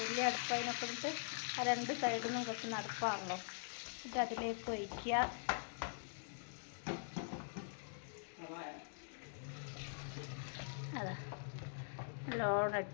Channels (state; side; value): silent; right; digital silence